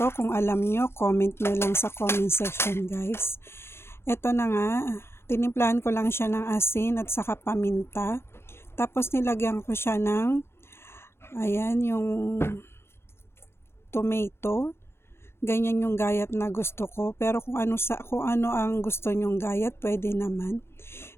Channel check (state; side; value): late; right; 0.12 ms